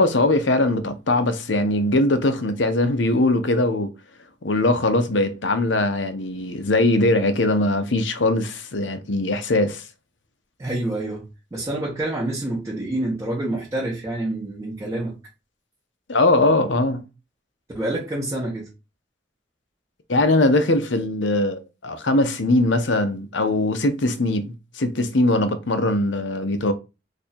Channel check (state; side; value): normal; both; correlation 0.21